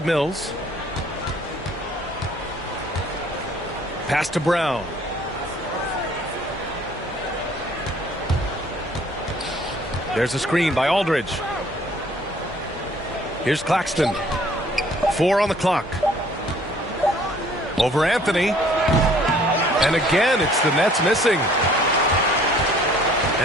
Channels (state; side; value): normal; both; correlation 0.57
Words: Mills. Pass to Brown. There's a screen by Aldridge. Here's Claxton. 4 on the clock. Over Anthony. And again, it's the Nets missing.